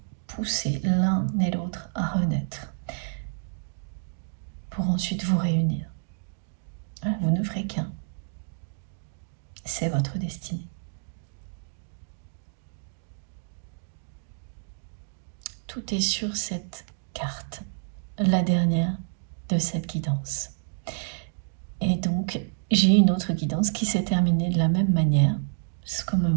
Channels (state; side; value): silent; left; digital silence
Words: poussé l'un et l'autre à renaître pour ensuite vous réunir. Voilà, vous ne ferez qu'un. C'est votre destinée. Tout est sur cette carte, la dernière de cette guidance. Et donc, j'ai une autre guidance qui s'est terminée de la même manière, ce qu'on me